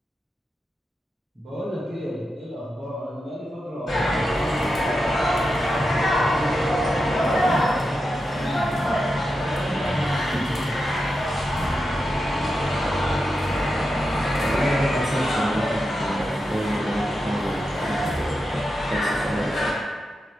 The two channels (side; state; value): both; normal; correlation 0.88